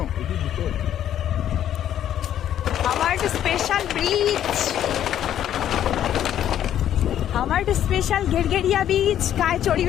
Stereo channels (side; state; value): right; quieter; 10.8 dB